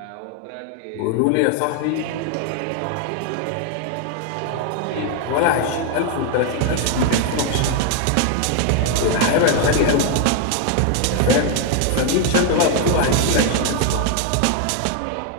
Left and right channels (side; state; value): both; different; correlation 0.01